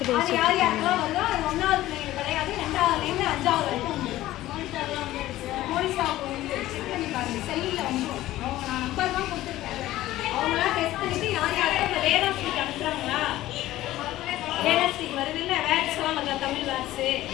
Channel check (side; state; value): right; quieter; 15.4 dB